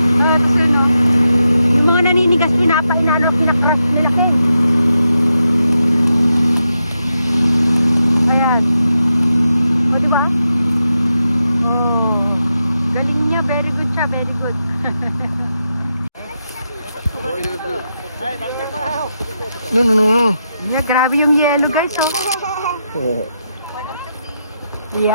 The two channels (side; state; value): both; inverted; correlation -0.85